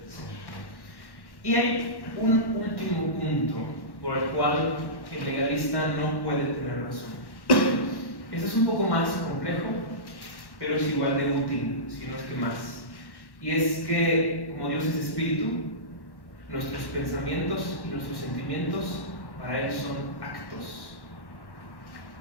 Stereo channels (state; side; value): late; right; 1.1 ms